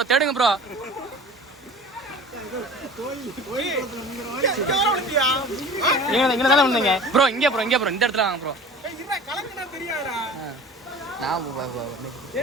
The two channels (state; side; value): normal; both; correlation 0.40